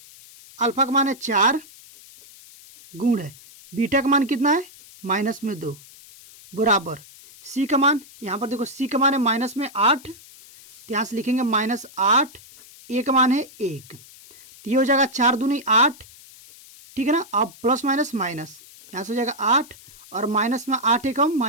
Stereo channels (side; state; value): left; noise; hiss, 21 dB below the sound